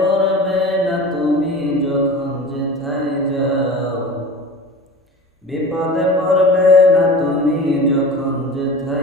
না তুমি যখন যেথায় যাও। বিপদে পড়বে না তুমি যখন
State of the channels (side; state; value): both; normal; correlation 0.34